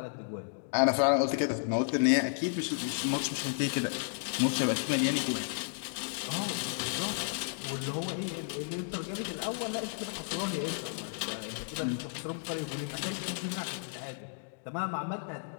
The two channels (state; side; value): silent; right; digital silence